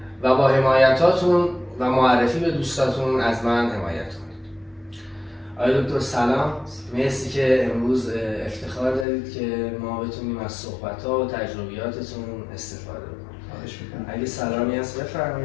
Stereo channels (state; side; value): drops out; right; at 9.1 s